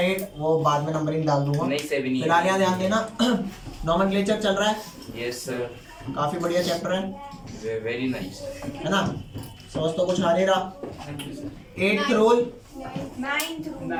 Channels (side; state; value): both; identical; correlation 1.00